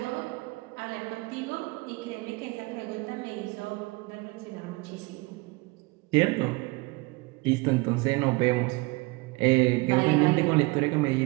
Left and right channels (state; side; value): quieter; left; 24.7 dB